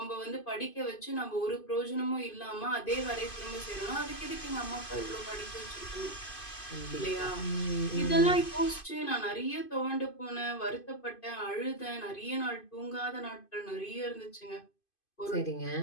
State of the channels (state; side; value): late; right; 2.5 ms